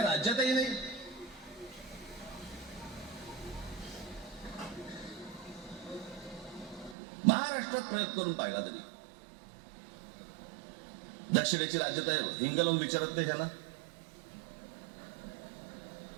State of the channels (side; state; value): left; drops out; at 7.0 s